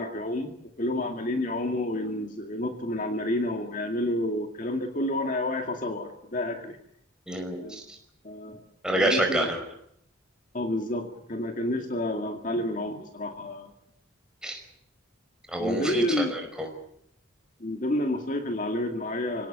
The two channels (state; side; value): normal; both; correlation 0.44